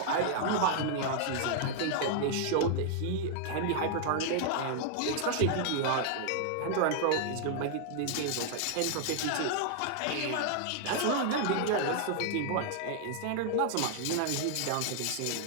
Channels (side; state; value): both; different; correlation -0.01